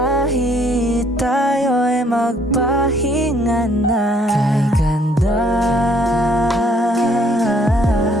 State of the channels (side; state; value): both; normal; correlation 0.64